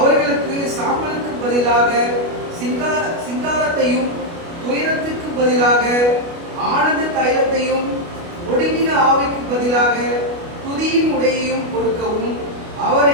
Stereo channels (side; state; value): left; late; 29 ms